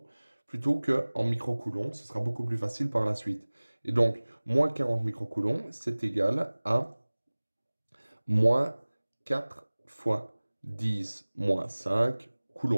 plutôt qu'en microcoulombs. Ce sera beaucoup plus facile par la suite. Et donc, moins 40 microcoulombs, c'est égal à moins 4 fois 10 moins 5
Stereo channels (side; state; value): both; inverted; correlation -1.00